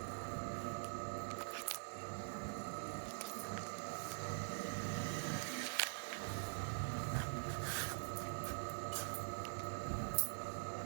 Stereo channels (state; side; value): silent; left; digital silence